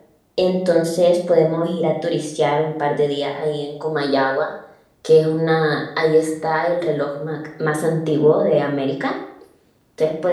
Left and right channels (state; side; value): identical; both; correlation 1.00